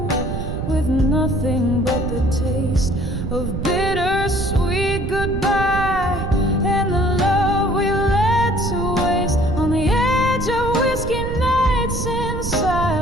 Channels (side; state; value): right; noise; rumble, 4 dB below the sound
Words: with nothing but the taste of bittersweet goodbye and the love we let to waste. On the edge of whiskey nights in